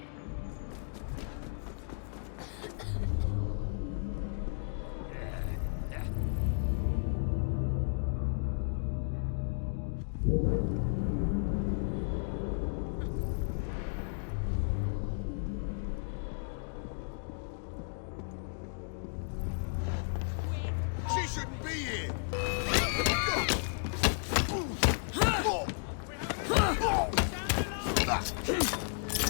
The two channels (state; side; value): silent; right; digital silence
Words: She shouldn't be here.